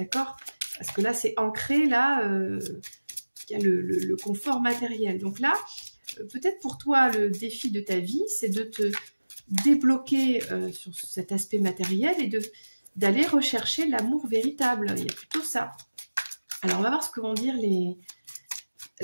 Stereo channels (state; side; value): inverted; both; correlation -1.00